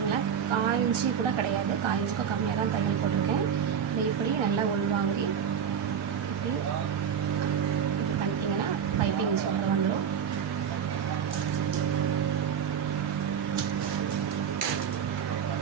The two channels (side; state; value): left; quieter; 7.9 dB